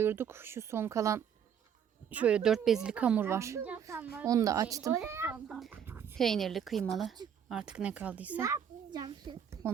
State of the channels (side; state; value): left; quieter; 8.2 dB